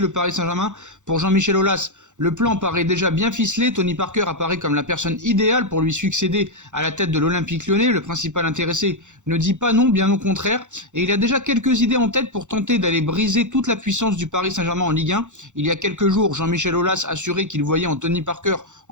Paris Saint-Germain. Pour Jean-Michel Aulas, le plan paraît déjà bien ficelé. Tony Parker apparaît comme la personne idéale pour lui succéder à la tête de l'Olympique Lyonnais. Le principal intéressé ne dit pas non, bien au contraire. Et il a déjà quelques idées en tête pour tenter d'aller briser toute la puissance du Paris Saint-Germain en Ligue 1. Il y a quelques jours, Jean-Michel Aulas assurait qu'il voyait en Tony Parker,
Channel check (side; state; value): left; late; 0.85 ms